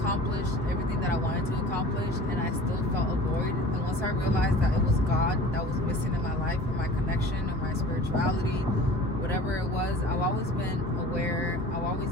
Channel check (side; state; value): both; normal; correlation 0.42